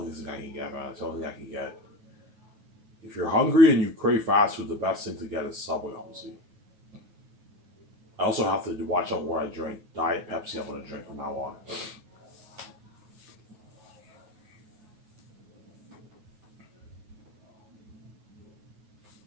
thing I can get, man. It's the only thing I can get. If you're hungry and you crave fast food, the best thing to get is Subway, obviously. I also have to watch out what I drink. Diet Pepsi, I'm gonna drink from now on.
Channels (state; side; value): late; left; 9.4 ms